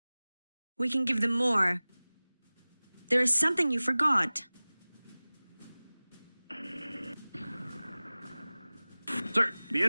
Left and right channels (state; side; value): inverted; both; correlation -0.99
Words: We can give them more. There is something you forgot. Sir, the